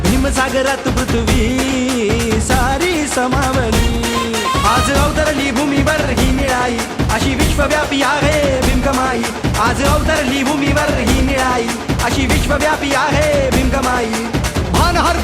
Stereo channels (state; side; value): identical; both; correlation 1.00